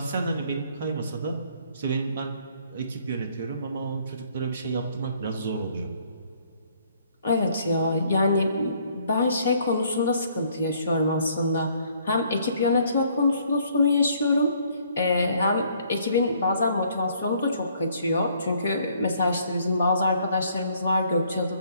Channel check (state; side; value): inverted; both; correlation -0.64